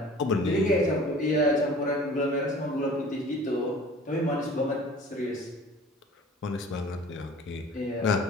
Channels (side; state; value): both; normal; correlation 0.46